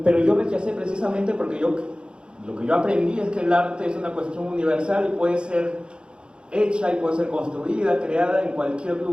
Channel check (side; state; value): left; late; 0.053 ms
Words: yo rechacé precisamente porque lo que yo aprendí es que el arte es una cuestión universal y puede ser hecha y puede ser construida, creada en cualquier